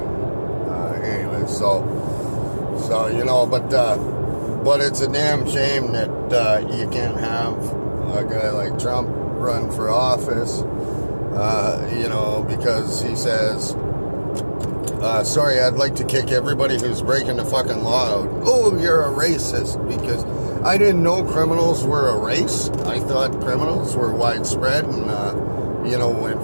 Anyway, so you know, but it's a damn shame that you can't have a guy like Trump run for office, you know, because he says, sorry, I'd like to kick everybody who's breaking the fucking law out. Oh, you're a racist, because I didn't know criminals were a race. I thought criminals were widespread and, you know,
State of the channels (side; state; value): both; inverted; correlation -1.00